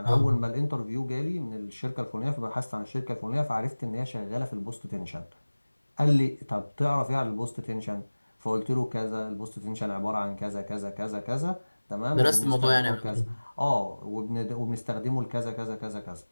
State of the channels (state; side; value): inverted; both; correlation -1.00